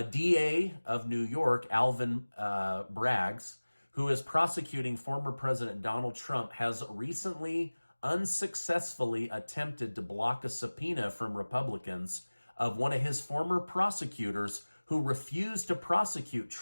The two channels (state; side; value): inverted; both; correlation -1.00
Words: DA of New York, Alvin Braggs, who is prosecuting former President Donald Trump, has recently unsuccessfully attempted to block a subpoena from Republicans of one of his former prosecutors who refused to prosecute